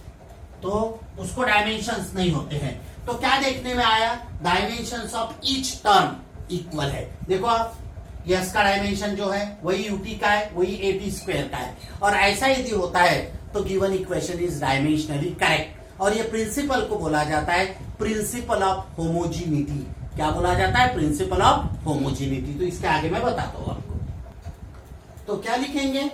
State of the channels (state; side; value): identical; both; correlation 1.00